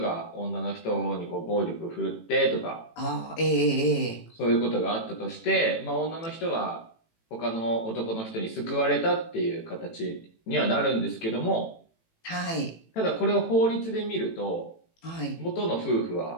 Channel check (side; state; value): right; late; 18 ms